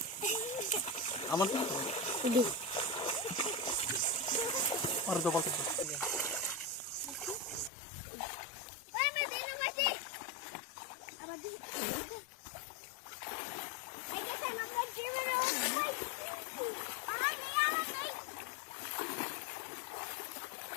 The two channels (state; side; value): drops out; right; at 7.7 s